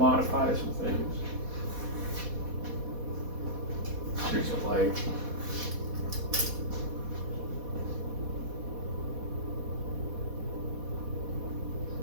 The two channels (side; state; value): left; late; 4.1 ms